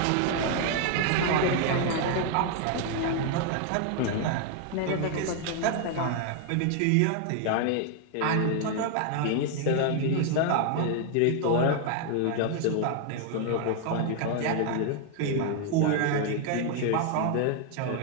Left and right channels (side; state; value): both; different; correlation 0.00